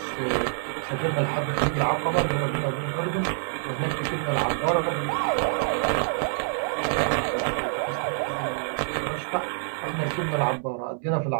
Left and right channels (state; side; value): silent; left; digital silence